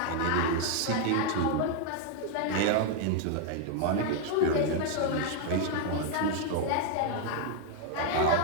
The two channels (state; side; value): different; both; correlation 0.00